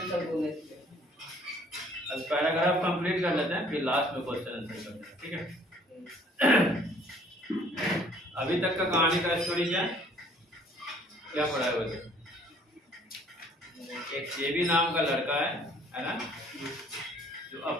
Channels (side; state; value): both; normal; correlation 0.57